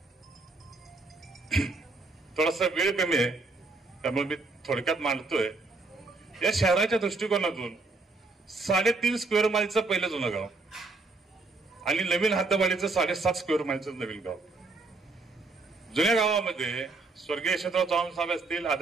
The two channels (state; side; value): quieter; left; 3.5 dB